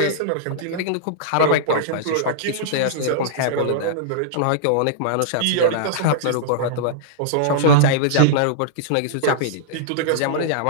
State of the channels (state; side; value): different; both; correlation -0.02